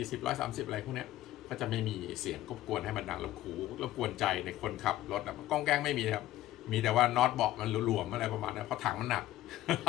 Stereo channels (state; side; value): quieter; right; 14.4 dB